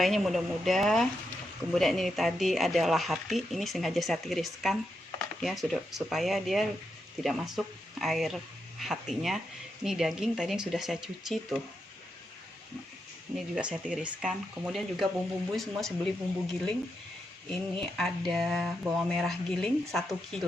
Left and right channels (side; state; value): both; normal; correlation 0.84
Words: muda-muda. Kemudian ini tadi adalah hati, ini sengaja saya tiriskan ya, sudah supaya dia tidak masuk air hatinya. Ini daging tadi yang sudah saya cuci tuh, ini juga saya tiriskan. Kemudian juga bumbu-bumbu semua saya beli bumbu giling. Ini ada bawang merah giling 1